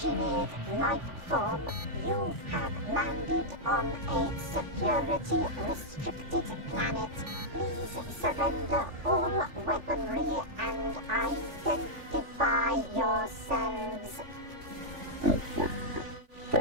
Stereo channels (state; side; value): late; left; 3.4 ms